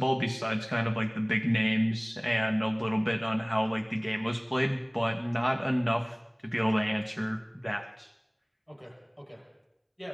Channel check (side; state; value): both; identical; correlation 1.00